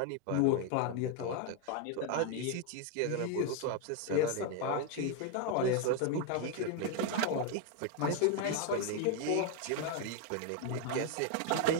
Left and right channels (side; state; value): both; different; correlation 0.01